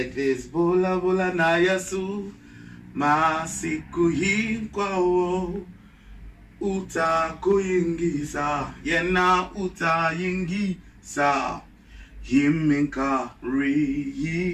this. Bula Bula na Yesu, masiku hinkwawo, uta kuyingisa, yena uta yingisa. Himinka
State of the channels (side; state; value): both; identical; correlation 1.00